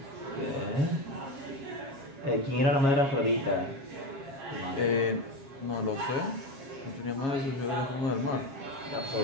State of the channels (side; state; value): left; late; 7.3 ms